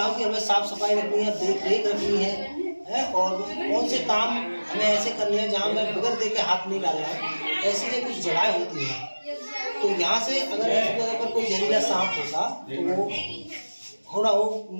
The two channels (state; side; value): inverted; both; correlation -1.00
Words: की हमें साफ सफाई रखनी है, देख रेख रखनी है और कौन से काम हमें ऐसे करने हैं जहाँ हमें बगैर देखे हाथ नहीं डालना है। ऐसी ये कुछ जगह होती हैं। तो यहाँ से अगर इस जगह पर कोई जहरीला सांप होता तो वो थोड़ा